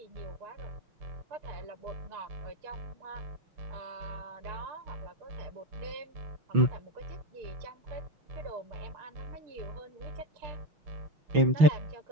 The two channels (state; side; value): late; left; 6.1 ms